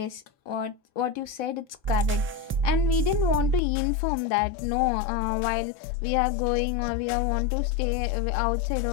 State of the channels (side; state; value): right; drops out; at 3.6 s